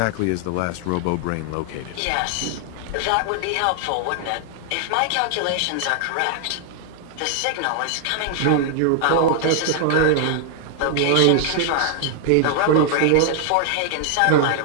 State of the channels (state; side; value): different; both; correlation 0.00